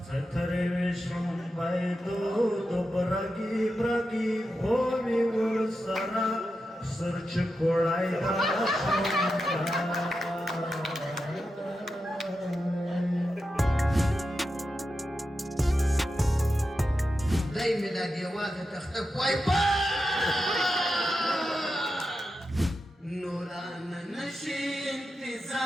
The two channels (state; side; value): normal; both; correlation 0.89